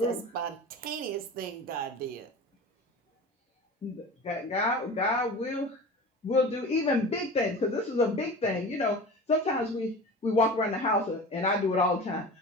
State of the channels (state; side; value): normal; both; correlation 0.35